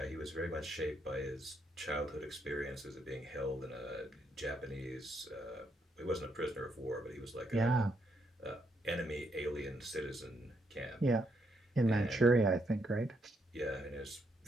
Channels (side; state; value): both; normal; correlation 0.76